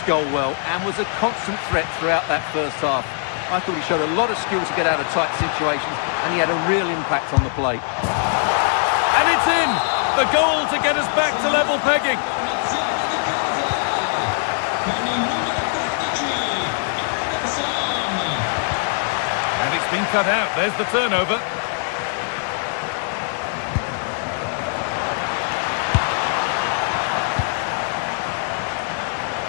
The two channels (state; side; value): silent; right; 65 dB below the other